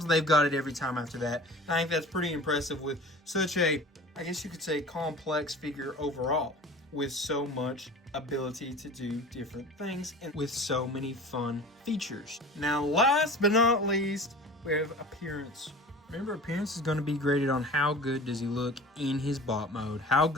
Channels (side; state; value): both; normal; correlation 0.40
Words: they've got it every time after that. I think that's pretty impressive with such a, I guess you could say, complex figure overall, with so much ability to do different things and with so many fun features. Now, last but not least, we have appearance. Remember, appearance is going to be graded on how good does he look in his bot mode, how